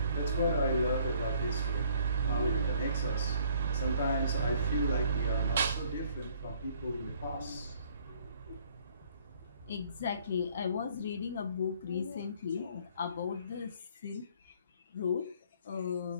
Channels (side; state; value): both; inverted; correlation -0.60